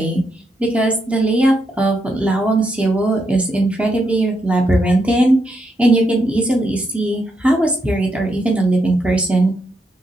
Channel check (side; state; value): both; normal; correlation 0.80